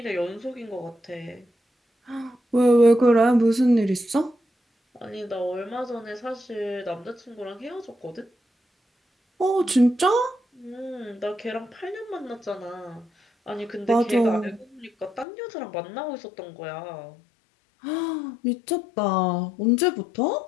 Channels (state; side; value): drops out; right; at 15.2 s